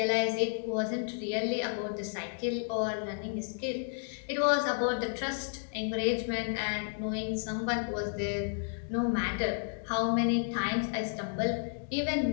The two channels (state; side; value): silent; right; 56 dB below the other